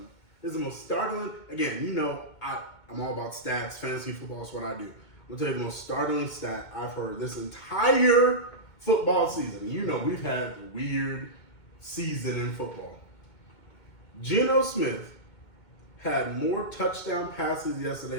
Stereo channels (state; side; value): late; right; 2.2 ms